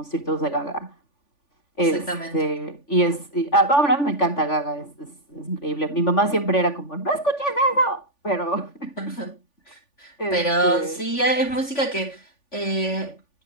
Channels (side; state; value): right; late; 3.5 ms